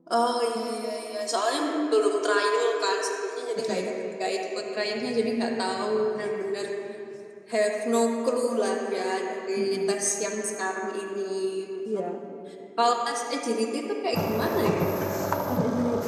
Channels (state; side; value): identical; both; correlation 1.00